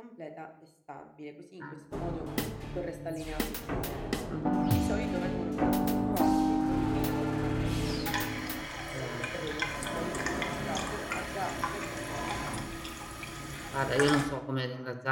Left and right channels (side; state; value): both; identical; correlation 1.00